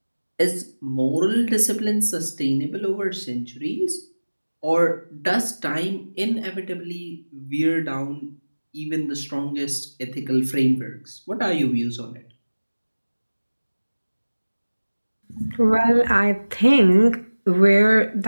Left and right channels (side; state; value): both; inverted; correlation -1.00